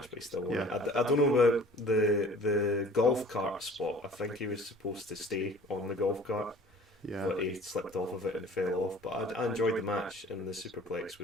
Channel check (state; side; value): normal; both; correlation 0.48